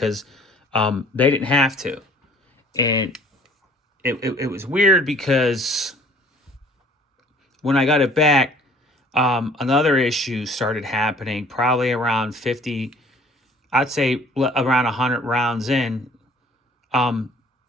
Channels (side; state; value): both; normal; correlation 0.54